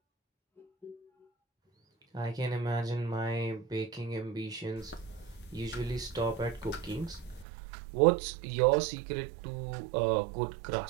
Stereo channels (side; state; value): left; drops out; at 7.5 s